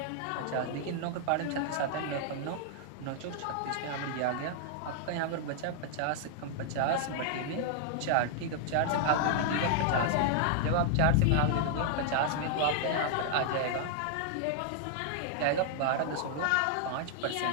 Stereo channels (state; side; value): different; both; correlation -0.01